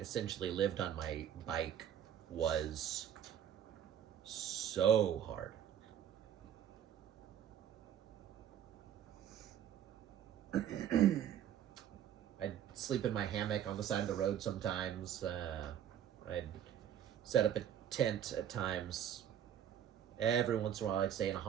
lived on my bike was so hard. I'd sleep in my hammock on the side of the road sometimes. I'd set up a tent at times. Every once in a while I'd stay in a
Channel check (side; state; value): left; quieter; 9.8 dB